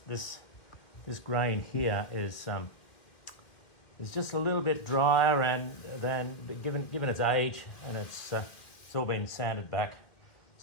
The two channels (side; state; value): right; late; 1.9 ms